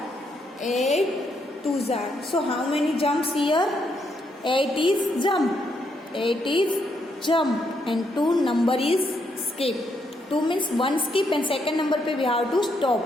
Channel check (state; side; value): normal; both; correlation 0.76